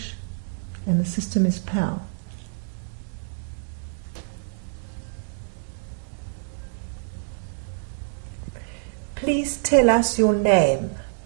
and the system is PAL. Please tell us your name.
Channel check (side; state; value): left; silent; digital silence